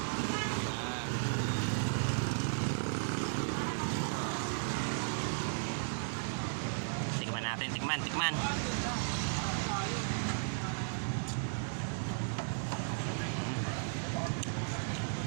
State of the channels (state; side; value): silent; left; digital silence